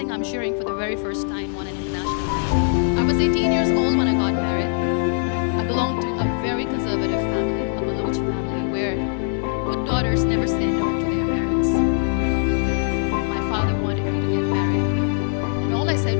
I'm sharing for the very first time on an international level. I was 18 years old when I got married. I belonged to a very conservative family, a Baloch family, where good daughters never say no to their parents. My father wanted me to get married. And all I said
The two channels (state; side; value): silent; right; 64 dB below the other